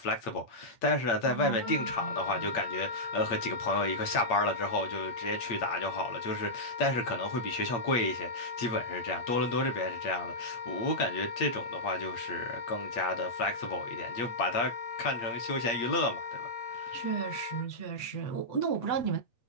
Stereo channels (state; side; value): late; right; 8.6 ms